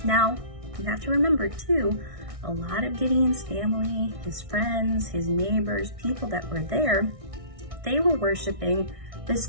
Now, you have to remember too, a lot of Gideon's family, his friends, his neighbors, people that were there, they were worshiping this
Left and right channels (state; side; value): late; left; 1.6 ms